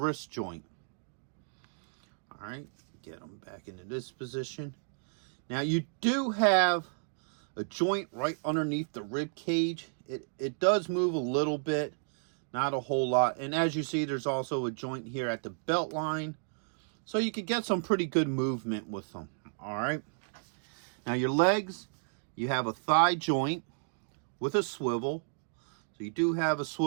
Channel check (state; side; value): silent; left; digital silence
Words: joint. All right, get them back into this position. Now, you do have a joint right underneath the rib cage. It does move a little bit, not a whole lot. And as you see, there's also a joint here at the belt line. So you could get some pretty good movement with them. All right. Now your legs, you have a thigh joint with a swivel. So you do have a